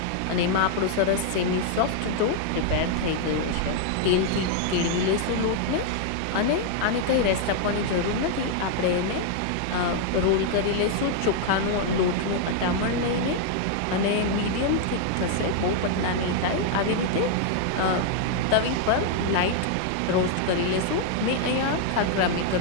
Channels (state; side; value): different; both; correlation 0.00